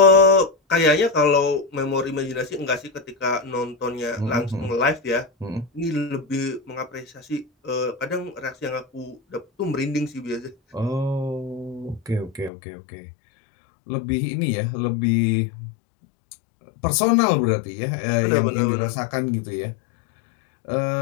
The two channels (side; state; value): right; drops out; at 12.5 s